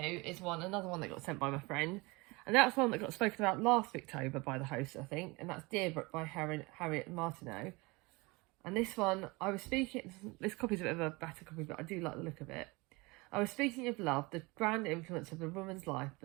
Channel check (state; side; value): quieter; left; 25.0 dB